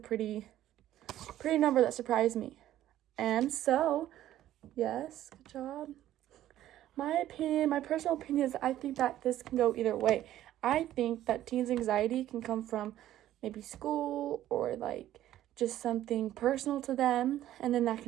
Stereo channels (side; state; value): left; quieter; 13.0 dB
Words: number that surprised me. And so, yes, good job. My personal opinion is I think that this can go either way. I think that teens' anxiety can come from maybe school or like just something personal to them, and then that